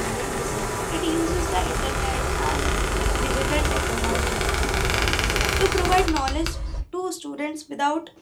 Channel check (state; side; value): identical; both; correlation 1.00